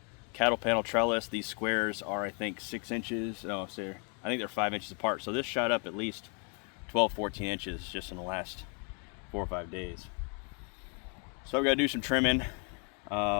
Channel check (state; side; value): quieter; right; 38.3 dB